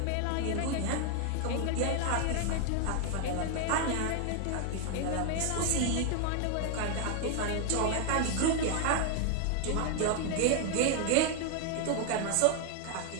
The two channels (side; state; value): both; different; correlation 0.00